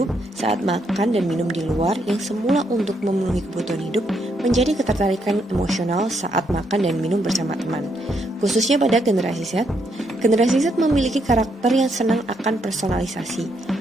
saat makan dan minum di luar yang semula untuk memenuhi kebutuhan hidup menjadi ketertarikan emosional saat makan dan minum bersama teman. Khususnya pada generasi Z, generasi Z memiliki karakter yang senang akan personalisasi.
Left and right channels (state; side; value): normal; both; correlation 0.76